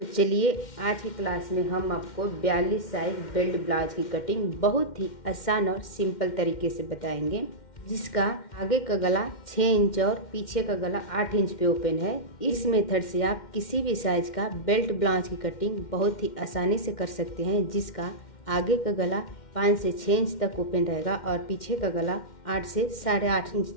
तो चलिए आज की क्लास में हम आपको 42 साइज बेल्ट ब्लाउज की कटिंग बहुत ही आसान और सिंपल तरीके से बताएंगे, जिसका आगे का गला 6 इंच और पीछे का गला 8 इंच पे ओपन है। इस मेथड से आप किसी भी साइज का बेल्ट ब्लाउज की कटिंग बहुत ही आसानी से कर सकते हैं, जिसका आगे का गला 5 से 6 इंच तक ओपन रहेगा और पीछे का गला 8 से 8.5 इंच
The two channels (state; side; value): late; right; 2.1 ms